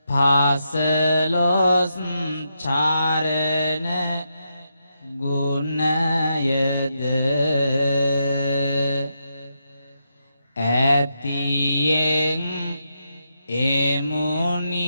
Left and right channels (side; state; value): both; inverted; correlation -0.83